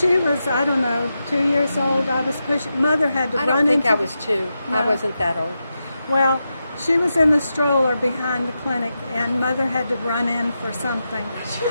was, I don't know, 2 years old, I was pushing. Mother had to I run don't think into I the- was 2. I No. wasn't that old. Well, she was in the stroller behind the clinic, and Mother had to run in for something.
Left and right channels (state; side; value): inverted; both; correlation -0.88